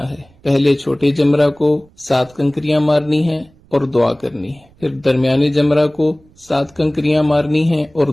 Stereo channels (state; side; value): noise; right; rumble, 30 dB below the sound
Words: ہے۔ پہلے چھوٹے جمرہ کو 7 کنکریاں مارنی ہیں اور دعا کرنی ہے، پھر درمیانے جمرہ کو 7 کنکریاں مارنی ہیں اور